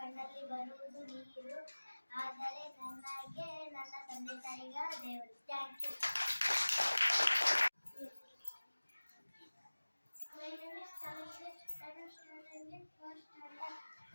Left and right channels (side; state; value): both; inverted; correlation -1.00